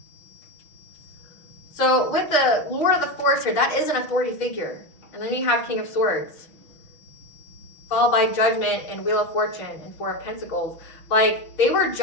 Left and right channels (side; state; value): right; late; 6.2 ms